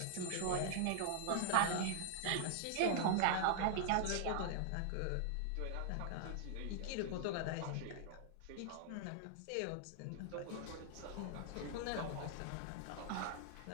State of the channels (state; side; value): different; both; correlation -0.01